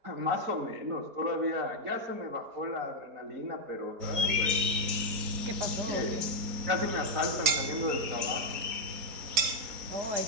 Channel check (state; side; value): late; left; 3.9 ms